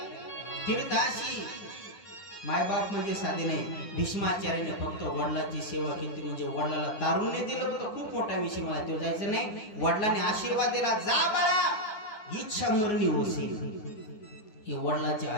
तीर्थाशी. मायबाप म्हणजे साधे नाही. भीष्माचार्याने फक्त वडिलांची सेवा केली, म्हणजे वडिलाला तारुण्य दिलं होतं. खूप मोठा विषय, मला तो जायचं नाही. वडिलांनी आशीर्वाद दिला, जा बाळा इच्छा मरणी होशील. हे वडिलांचे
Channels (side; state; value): right; late; 9.6 ms